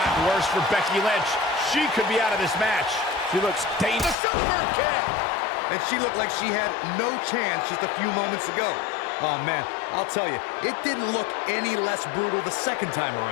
worse for Becky Lynch. She could be out of this match. She looks dangerous. The super kick. And she looked like she had no chance just a few moments ago. Oh man, I'll tell you, it didn't look any less brutal the second time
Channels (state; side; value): drops out; right; at 4.2 s